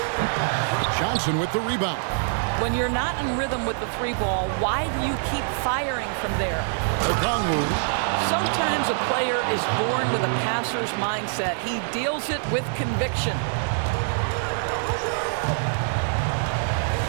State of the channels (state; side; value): silent; left; digital silence